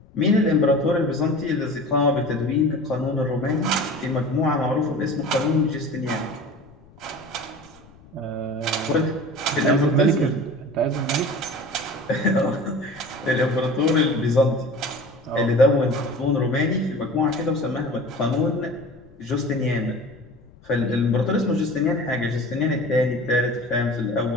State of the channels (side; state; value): left; noise; rumble, 25 dB below the sound